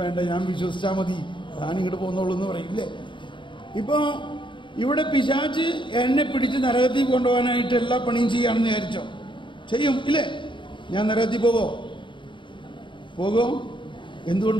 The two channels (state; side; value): late; right; 0.23 ms